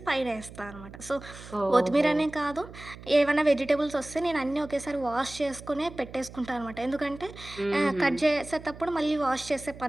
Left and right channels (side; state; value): right; noise; hum, 16 dB below the sound